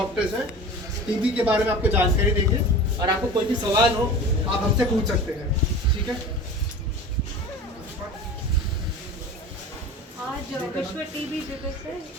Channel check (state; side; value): normal; both; correlation 0.36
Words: हैं टीबी के बारे में आपको जानकारी देंगे और आपको कोई भी सवाल हो आप हमसे पूछ सकते हैं। ठीक है। आज विश्व टीबी दिवस है,